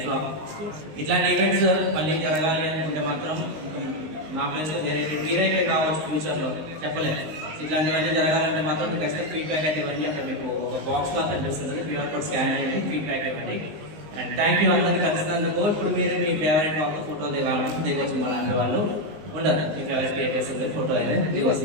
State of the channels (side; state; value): left; late; 19 ms